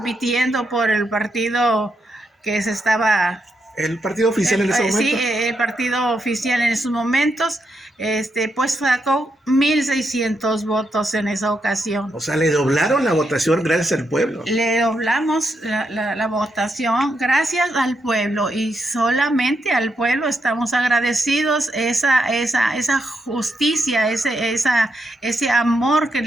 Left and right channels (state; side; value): normal; both; correlation 0.82